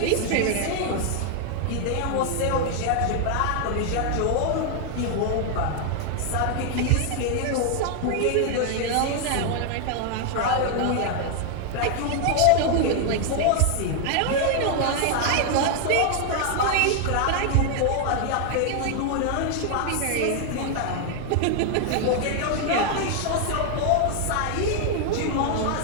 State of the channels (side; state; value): both; different; correlation 0.00